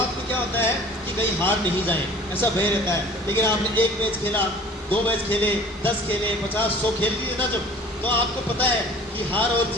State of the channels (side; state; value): both; normal; correlation 0.47